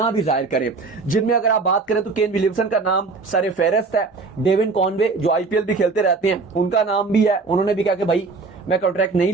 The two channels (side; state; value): left; quieter; 4.2 dB